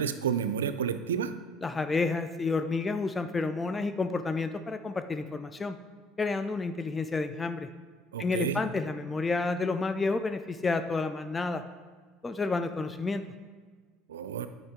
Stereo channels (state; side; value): normal; both; correlation 0.62